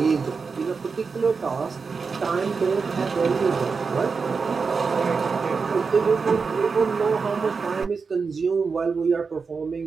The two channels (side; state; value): left; quieter; 5.0 dB